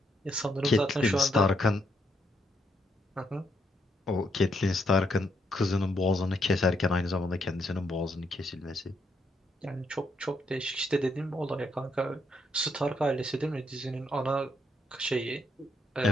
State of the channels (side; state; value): both; normal; correlation 0.76